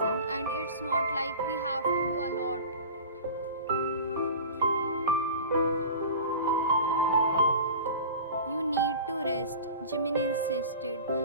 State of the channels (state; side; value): inverted; both; correlation -0.36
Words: and it's not like we have to do a lot. You need to rest, Jimin insisted,